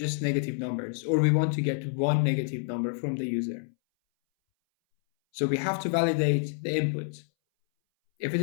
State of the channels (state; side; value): silent; right; 59 dB below the other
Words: negative numbers, or we want to get one negative number from the user. So we have to validate the input. If it